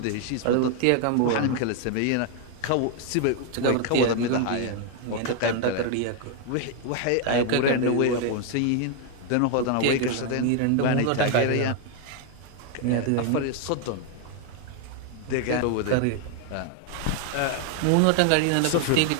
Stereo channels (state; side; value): different; both; correlation 0.00